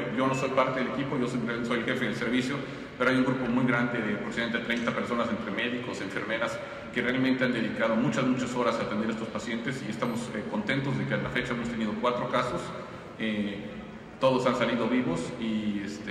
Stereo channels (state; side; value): identical; both; correlation 1.00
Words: Yo no soy parte del equipo, yo soy el jefe del servicio, pero hay un grupo muy grande de aproximadamente 30 personas, entre médicos, enfermeras, que realmente han dedicado muchas horas a atender a estos pacientes, y estamos contentos de que a la fecha hemos tenido 4 casos. Todos han salido vivos